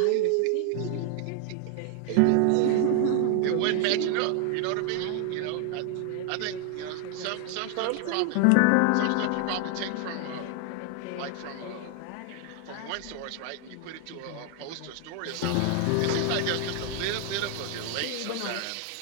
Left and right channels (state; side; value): different; both; correlation 0.00